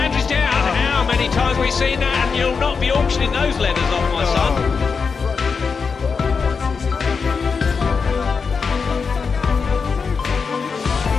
down. How many times have we seen that? And you'll not be auctioning those leathers off, my son.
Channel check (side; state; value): right; quieter; 5.3 dB